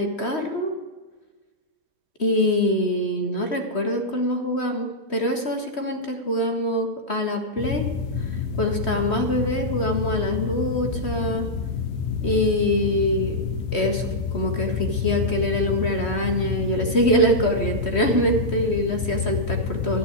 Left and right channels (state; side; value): late; right; 3.1 ms